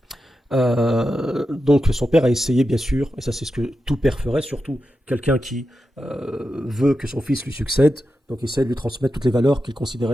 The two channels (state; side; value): normal; both; correlation 0.90